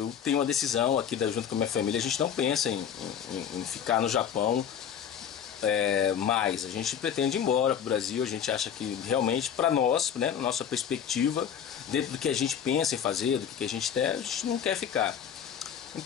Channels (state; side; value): quieter; right; 8.5 dB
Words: tenho uma decisão aqui junto com a minha família. A gente não pensa em ficar no Japão mais. A gente pretende ir embora pro Brasil. A gente acha que realmente, para nós, né, na nossa perspectiva, dentro do que a gente pensa em fazer, do que a gente quer, a gente não quer ficar.